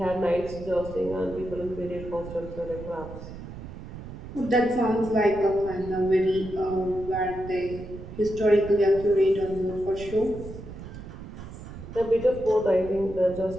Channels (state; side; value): noise; right; rumble, 12 dB below the sound